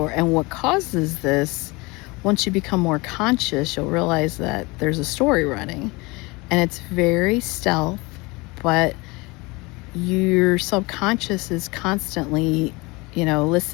what causes this, once you become more conscious, you'll realize that there's a story running, and it's very stealth, but your subconscious is constantly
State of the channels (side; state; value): right; quieter; 24.9 dB